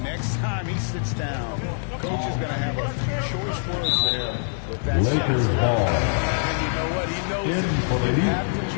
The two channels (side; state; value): right; silent; 62 dB below the other